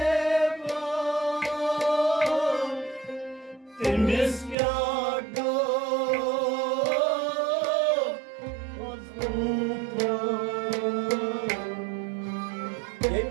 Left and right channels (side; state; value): left; drops out; at 4.5 s